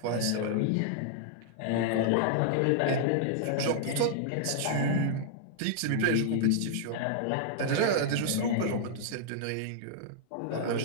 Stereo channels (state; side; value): different; both; correlation -0.01